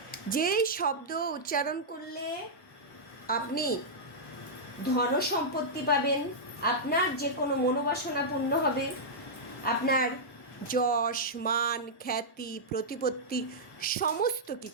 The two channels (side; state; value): both; normal; correlation -0.09